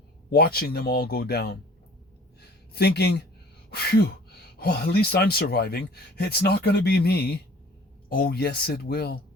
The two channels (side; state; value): both; normal; correlation 0.49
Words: watching them all go down, thinking, phew, well, at least I'm surviving. It's not going to be me. Oh, yes, it will.